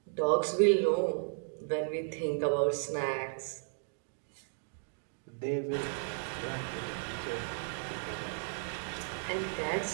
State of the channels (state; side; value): silent; left; 55 dB below the other